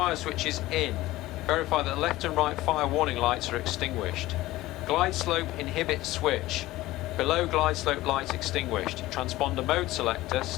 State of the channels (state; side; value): quieter; right; 17.3 dB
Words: switch is in. Verify that the left and right fire warning lights are extinguished. Glide slope inhibit switch. Below glide slope light extinguished. Transponder mode selector